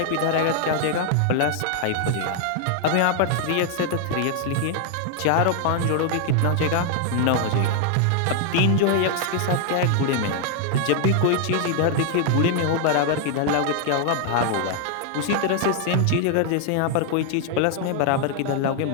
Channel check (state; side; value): different; both; correlation 0.00